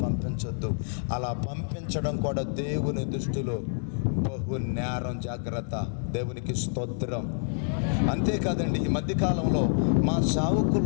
పంపించొద్దు. అలా పంపించడం కూడా దేవుని దృష్టిలో బహు నేరం. జాగ్రత్త. దేవునికి స్తోత్రం. అంతేకాదండి, ఈ మధ్యకాలంలో మా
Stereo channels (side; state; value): right; silent; 60 dB below the other